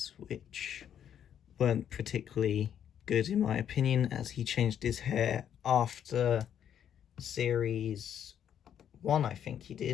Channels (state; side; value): quieter; right; 9.4 dB